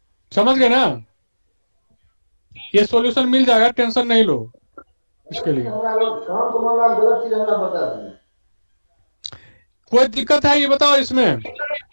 समझ गए ना। ये सॉल्यूशन मिल जाएगा, टेंशन नहीं लो इसके लिए। कोई दिक्कत है ये बताओ इसमें,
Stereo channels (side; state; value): both; inverted; correlation -1.00